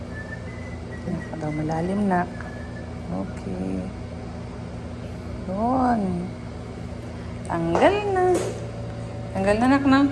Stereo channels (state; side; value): identical; both; correlation 1.00